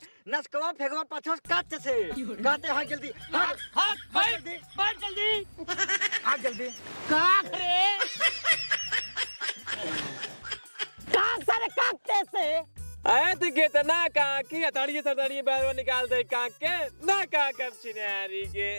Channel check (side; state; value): both; inverted; correlation -1.00